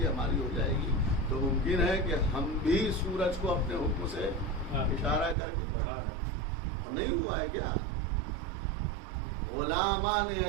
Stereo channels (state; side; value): drops out; left; at 5.4 s